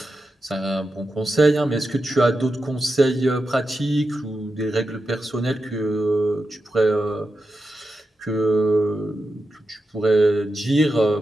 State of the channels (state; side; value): normal; both; correlation 0.89